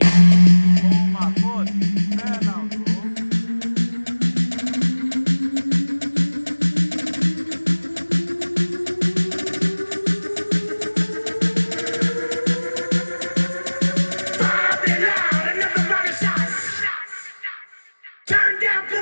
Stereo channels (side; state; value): both; inverted; correlation -1.00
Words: Oh my god, fair now, bro. Turn down for